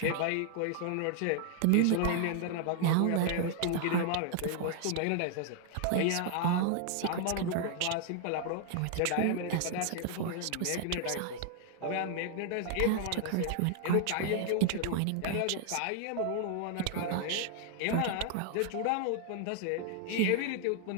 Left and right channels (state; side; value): different; both; correlation 0.00